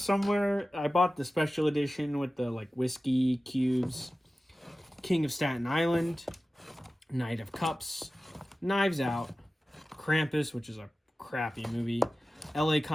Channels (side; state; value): both; normal; correlation 0.95